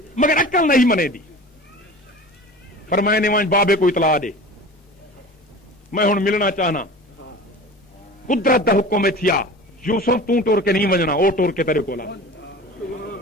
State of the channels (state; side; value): normal; both; correlation 0.38